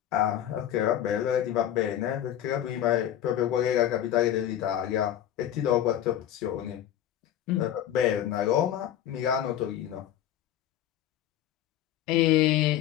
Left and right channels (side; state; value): right; quieter; 11.3 dB